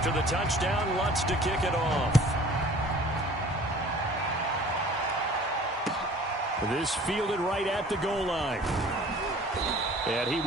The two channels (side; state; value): both; normal; correlation 0.48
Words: the touchdown, Lutz to kick it off. This fielded right at the goal line. And he